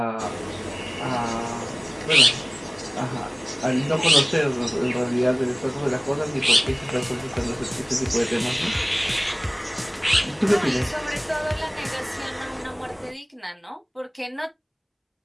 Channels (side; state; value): both; identical; correlation 1.00